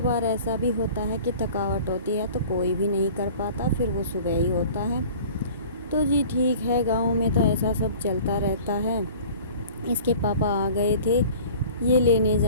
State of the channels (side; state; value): both; inverted; correlation -0.44